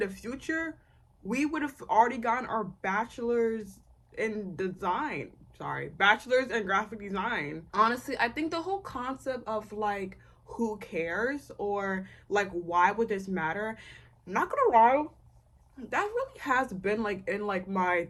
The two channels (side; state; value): both; identical; correlation 1.00